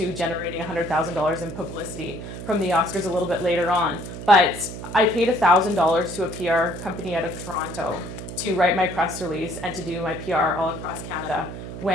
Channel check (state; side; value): noise; right; hum, 10 dB below the sound